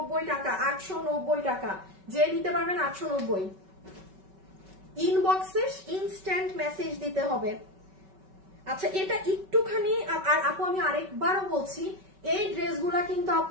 টাকা, 890 টাকা। যে নিতে পারবেন 890। ইনবক্সে ইনস্ট্যান্ট মেসেজ দিতে হবে। আচ্ছা, এটা একটুখানি, আর আপু আমি আরেকবারও বলছি, এই ড্রেসগুলা কিন্তু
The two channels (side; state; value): left; late; 5.3 ms